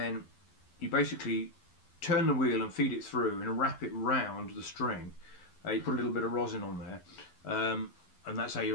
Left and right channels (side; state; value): right; late; 11 ms